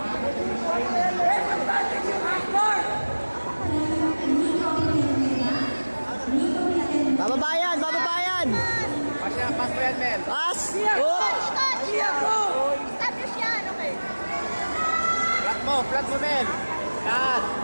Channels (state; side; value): inverted; both; correlation -1.00